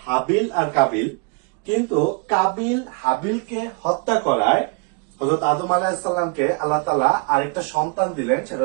হাবিল আর কাবিল। কিন্তু কাবিল হাবিলকে হত্যা করায় হযরত আদম আলাইহিস সালামকে আল্লাহ তাআলা আরেকটা সন্তান দিলেন, সেটা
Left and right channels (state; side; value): quieter; left; 32.0 dB